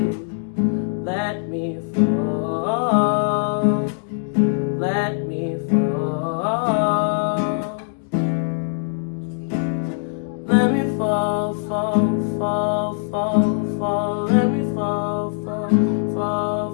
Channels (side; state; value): right; silent; 64 dB below the other